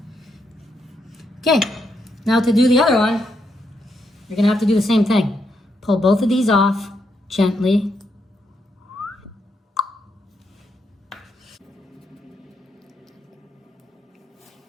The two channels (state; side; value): normal; both; correlation 0.80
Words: Okay, now to do the other one, you're gonna have to do the same thing. Pull both of these off gently.